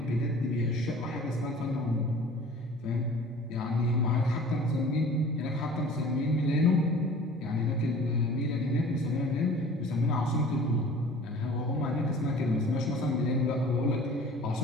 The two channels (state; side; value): normal; both; correlation 0.45